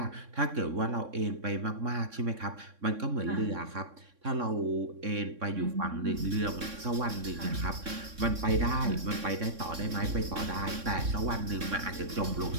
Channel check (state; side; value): late; left; 3.6 ms